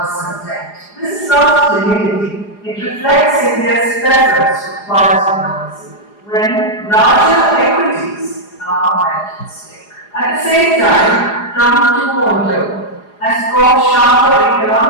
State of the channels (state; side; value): late; right; 4.8 ms